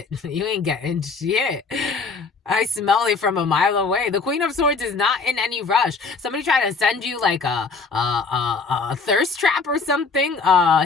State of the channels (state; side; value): quieter; right; 4.5 dB